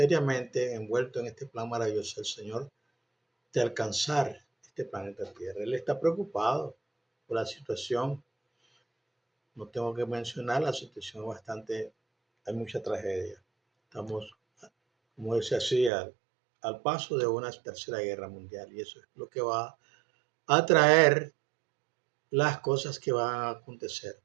envueltos en este plan maravilloso del Señor de alcanzar este planeta Tierra. Él está preocupado por la situación. No tengo que mencionar la situación bastante, hay mucha tragedia. Estamos, como dice así, al paso de una tercera guerra mundial y eso es lo que va a traer las cosas que van a acontecer.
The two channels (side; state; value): left; drops out; at 15.9 s